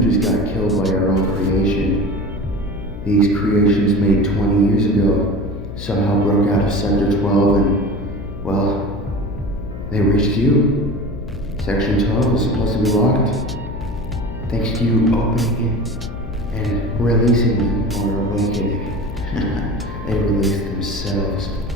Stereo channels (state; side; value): noise; left; hum, 10 dB below the sound